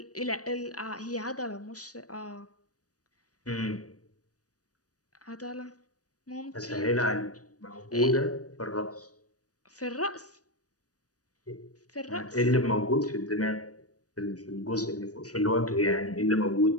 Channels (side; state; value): right; late; 0.67 ms